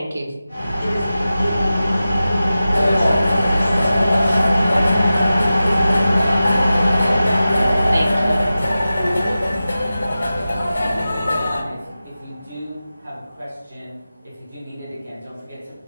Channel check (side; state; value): both; inverted; correlation -0.94